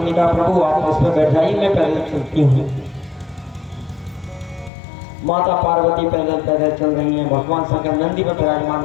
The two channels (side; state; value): right; drops out; at 4.7 s